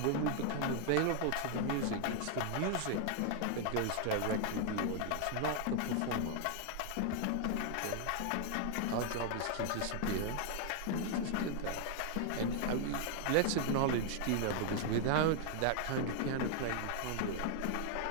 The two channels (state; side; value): different; both; correlation 0.00